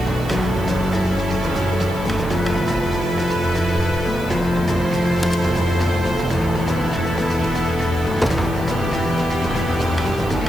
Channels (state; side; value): noise; right; hiss, 20 dB below the sound